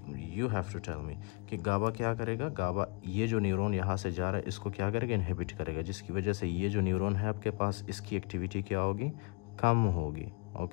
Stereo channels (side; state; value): right; quieter; 31.4 dB